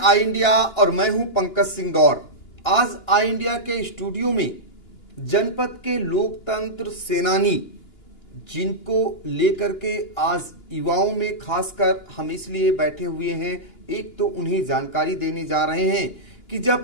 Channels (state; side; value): late; right; 2.9 ms